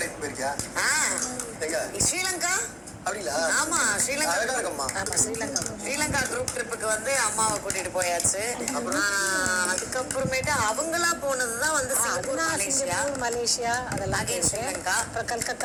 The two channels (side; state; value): both; identical; correlation 1.00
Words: போயிருக்கியா? ஸ்ரீலங்கா. அப்படிங்களா? ஆமா ஸ்ரீலங்கா. ஆமா ஸ்ரீலங்கா குரூப் ட்ரிப்புக்கு வந்து அம்மாவை கூட்டிட்டு போயாச்சு. அதுக்கப்புறமேட்டு அவங்களா போனதுதான் வந்து மலேசியா அதெல்லாம். ஸ்ரீலங்கா அப்புறம்